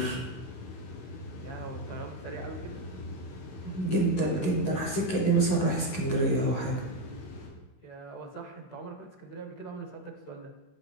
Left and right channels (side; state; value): right; late; 16 ms